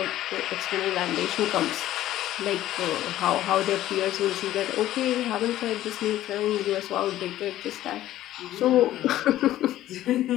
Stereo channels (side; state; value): right; quieter; 13.9 dB